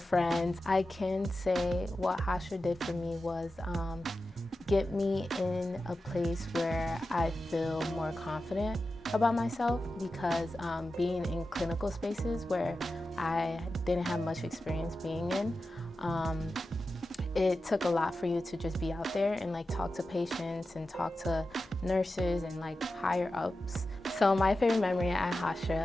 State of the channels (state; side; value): normal; both; correlation 0.92